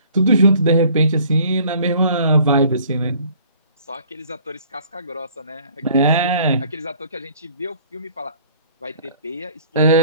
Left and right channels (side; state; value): both; inverted; correlation -0.55